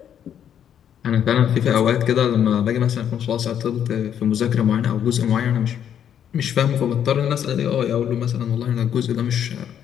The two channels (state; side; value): quieter; right; 9.3 dB